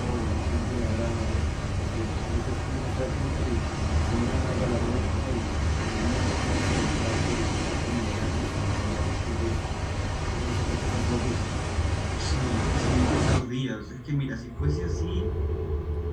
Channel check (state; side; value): identical; both; correlation 1.00